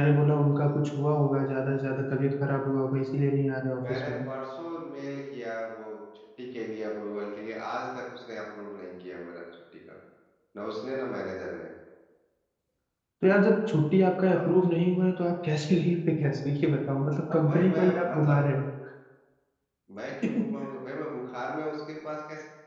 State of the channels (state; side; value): identical; both; correlation 1.00